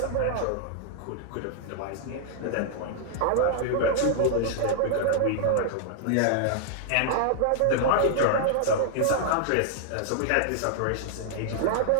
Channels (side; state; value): both; different; correlation -0.01